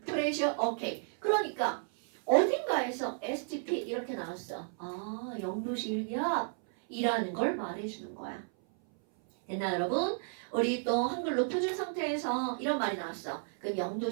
pressure. 오케이. 그러니까 어딘가에서 STP 이렇게 나왔어. 아, 0도씨 1기압이라는 걸 말해주는 거야. 됐나 여러분? 우리 또 한글로 표준 상태에서 이런 말이 나왔어. 그럼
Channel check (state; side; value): silent; left; 56 dB below the other